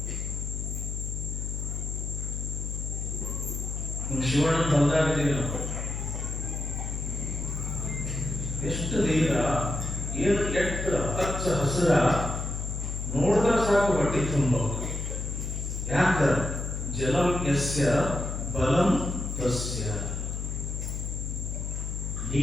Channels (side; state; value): left; noise; hum, 4 dB below the sound